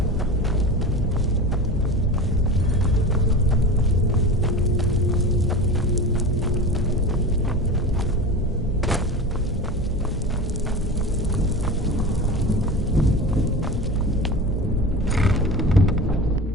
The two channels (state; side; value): normal; both; correlation 0.30